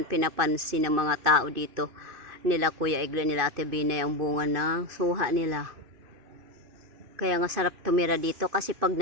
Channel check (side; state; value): left; late; 2.6 ms